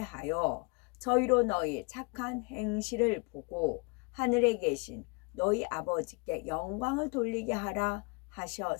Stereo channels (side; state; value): right; quieter; 30.7 dB